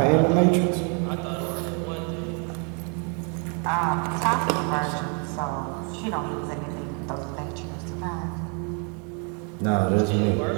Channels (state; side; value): quieter; left; 38.3 dB